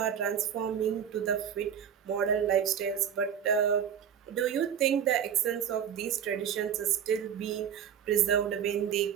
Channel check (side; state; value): left; quieter; 8.5 dB